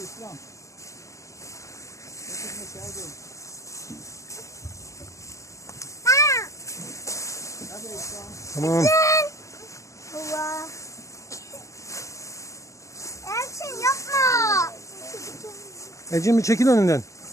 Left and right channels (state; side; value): late; right; 0.15 ms